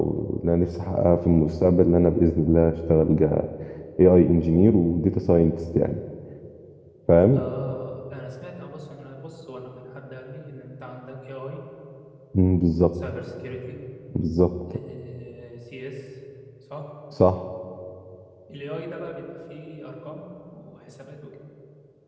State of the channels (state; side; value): identical; both; correlation 1.00